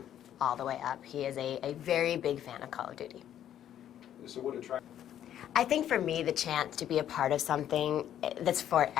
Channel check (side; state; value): right; quieter; 10.7 dB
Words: all the way up. He is a very big fan of Call of Duty. So what attracted? I think for me, the chance to be a part of something that's